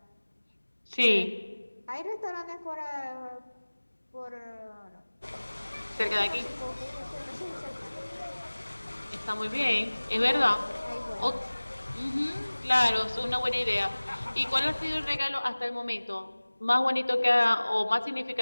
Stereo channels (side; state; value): both; inverted; correlation -1.00